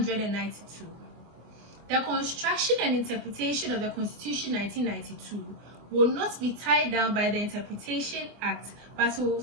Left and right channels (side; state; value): left; late; 24 ms